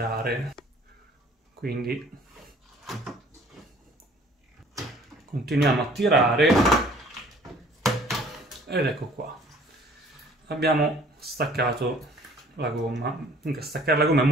Quindi continuiamo a tirare ed ecco qua, abbiamo staccato la gomma. Comunque staccare la gomma è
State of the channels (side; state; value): both; normal; correlation 0.54